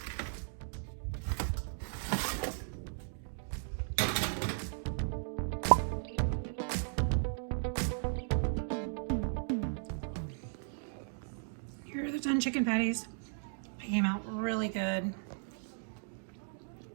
Here are the done chicken patties. They came out really good.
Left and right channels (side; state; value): left; silent; digital silence